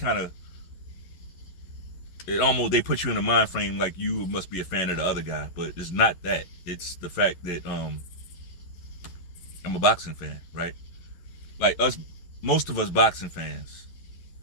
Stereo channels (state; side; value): late; right; 11 ms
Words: of, they put you in a mind frame like you must be a fan of the other guy, but it's not that. It's the fact that I'm a boxing fan, right? Like us, most of us boxing fans,